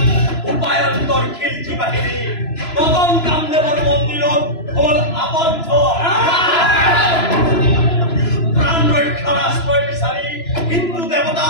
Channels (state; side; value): late; right; 3.0 ms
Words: উপায়ন্তৰ খিলজি বাহিনী মদন কামদেৱৰ মন্দিৰত হ'ল আবদ্ধ। প্ৰাণ ৰক্ষাৰ আশ্ৰয় বিচাৰি হিন্দু